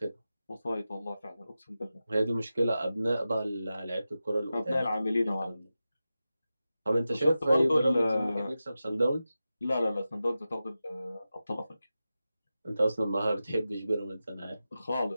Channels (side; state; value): both; inverted; correlation -0.93